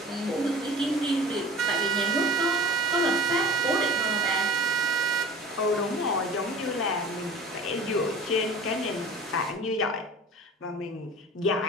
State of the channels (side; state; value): both; normal; correlation 0.39